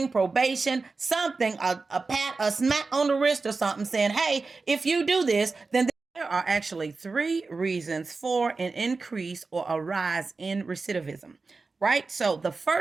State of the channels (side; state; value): left; quieter; 4.0 dB